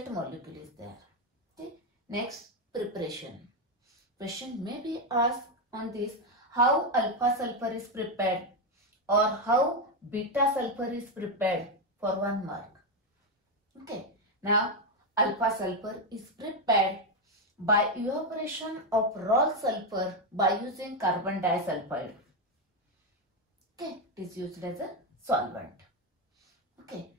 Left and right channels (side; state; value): both; normal; correlation 0.07